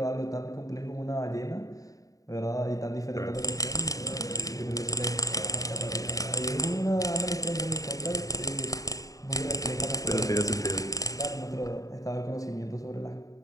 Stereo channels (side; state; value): right; late; 0.17 ms